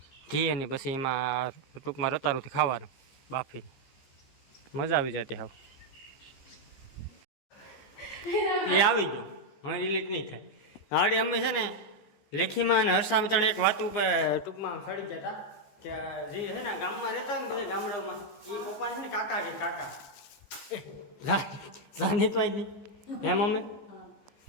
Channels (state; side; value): late; right; 15 ms